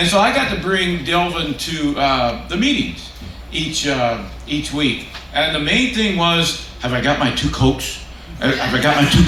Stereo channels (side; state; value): both; identical; correlation 1.00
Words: so I got to bring Delvin to the meetings each week. And the main thing was, have I got my 2 Cokes? Have I got my